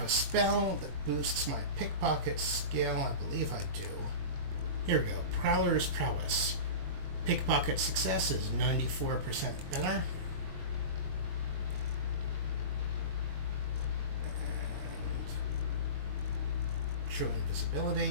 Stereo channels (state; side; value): late; left; 22 ms